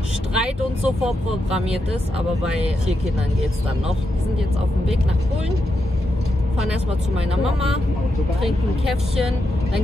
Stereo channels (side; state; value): both; normal; correlation 0.85